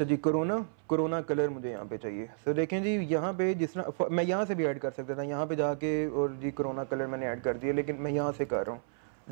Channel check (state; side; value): silent; left; 57 dB below the other